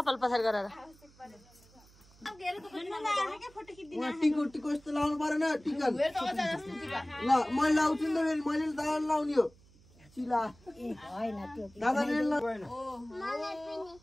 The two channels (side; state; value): right; noise; hum, 27 dB below the sound